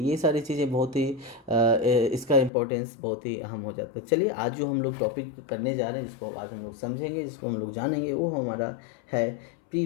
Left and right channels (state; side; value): drops out; right; at 2.5 s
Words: ये सारी चीज़ें बहुत ही इसका इम्पोर्टेंस बहुत ही अहम हो जाता है। चलिए आज जो हम लोग टॉपिक करने जा रहे हैं, जिसको आज हम लोग समझेंगे, जिसको हम लोग जानेंगे, वो हमारा है